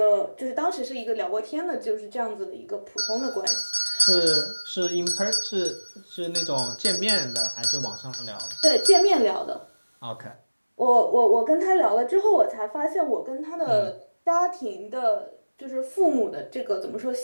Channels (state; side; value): inverted; both; correlation -1.00